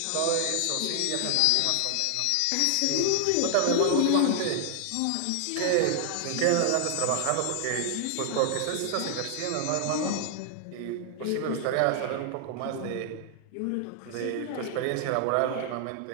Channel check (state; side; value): different; both; correlation -0.01